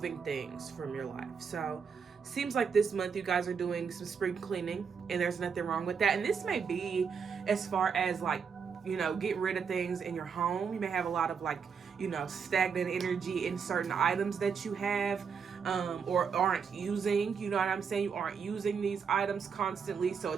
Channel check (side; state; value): left; quieter; 6.3 dB